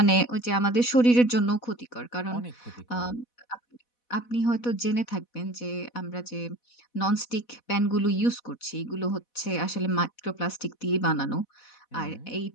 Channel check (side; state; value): right; late; 4.1 ms